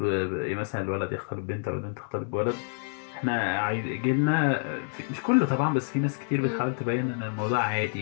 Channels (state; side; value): silent; right; digital silence